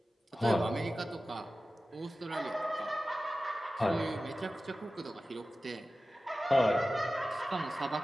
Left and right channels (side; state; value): both; normal; correlation 0.95